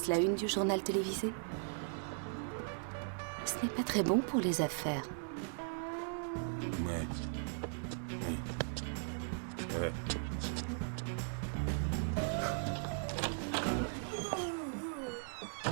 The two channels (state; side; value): silent; left; digital silence